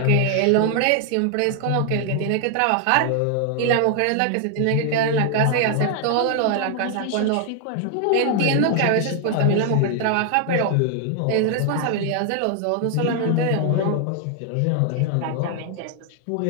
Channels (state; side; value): different; both; correlation 0.00